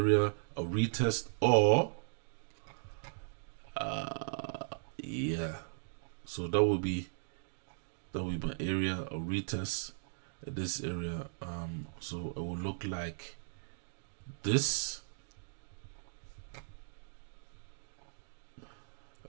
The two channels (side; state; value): left; silent; digital silence